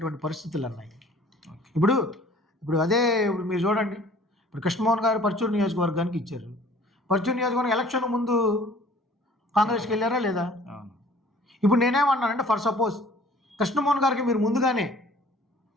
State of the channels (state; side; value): normal; both; correlation 0.52